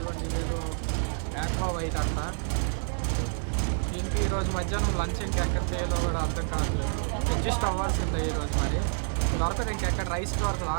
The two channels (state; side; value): silent; left; 59 dB below the other